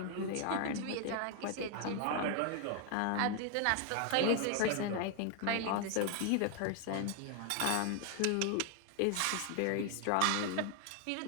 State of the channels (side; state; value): both; different; correlation 0.00